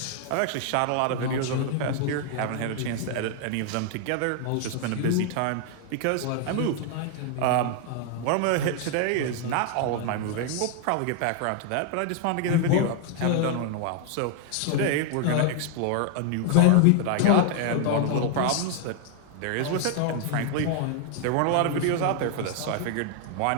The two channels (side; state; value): both; different; correlation 0.00